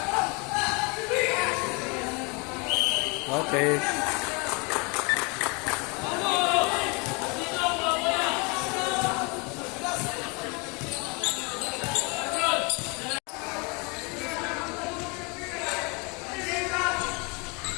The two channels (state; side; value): quieter; right; 30.4 dB